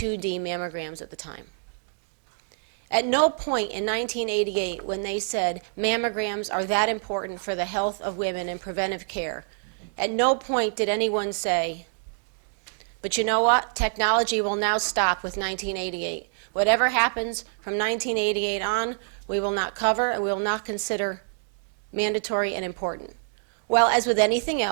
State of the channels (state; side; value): silent; left; digital silence